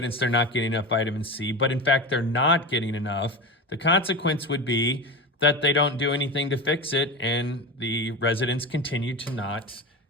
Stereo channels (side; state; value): both; normal; correlation 0.25